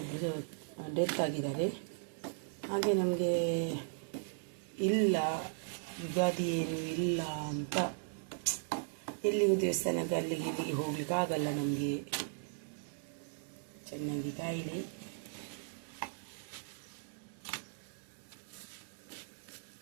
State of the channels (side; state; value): left; silent; 53 dB below the other